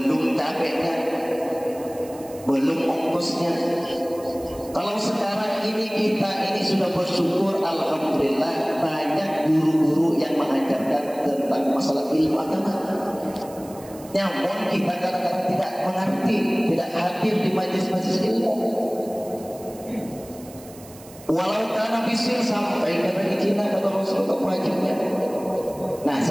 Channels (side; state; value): right; noise; hiss, 21 dB below the sound